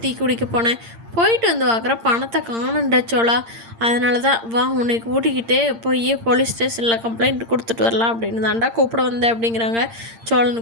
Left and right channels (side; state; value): left; late; 8.7 ms